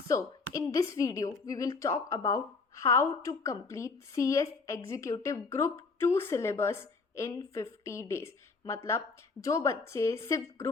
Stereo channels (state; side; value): quieter; right; 4.4 dB